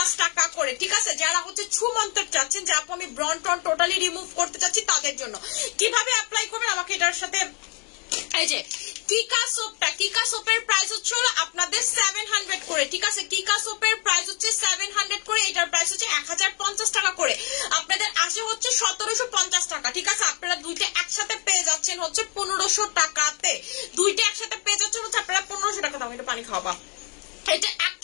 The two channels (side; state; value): right; quieter; 35.4 dB